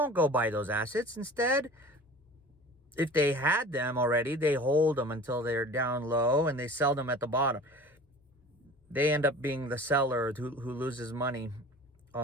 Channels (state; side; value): normal; both; correlation 0.41